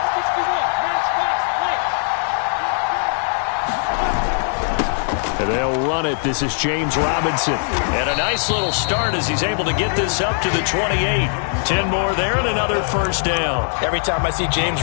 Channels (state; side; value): silent; right; digital silence